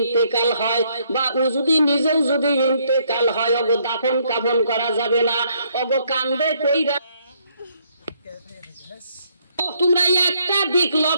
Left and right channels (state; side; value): inverted; both; correlation -0.70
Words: হয় বা ও যদি নিজেও যদি ইন্তেকাল হয়, ওগো দাফন কাফন করা যাবে না, ওগো কান্দে কইরা। তোমরা একটা দিক